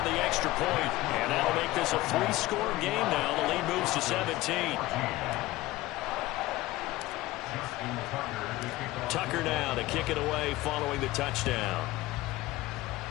the extra point, and that'll make this a 3-score game now. The lead moves to 17. Tucker now to kick it away following the touchdown.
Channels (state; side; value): quieter; right; 18.0 dB